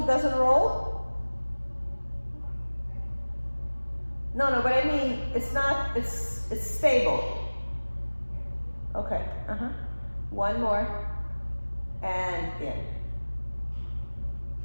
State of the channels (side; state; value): both; inverted; correlation -1.00